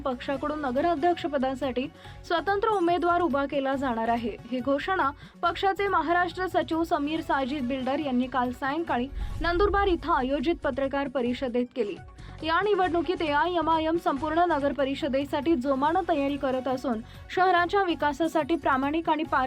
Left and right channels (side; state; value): both; identical; correlation 1.00